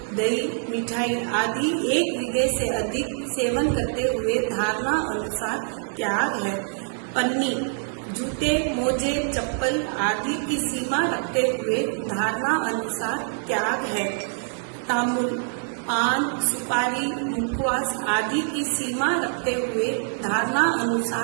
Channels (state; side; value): silent; left; digital silence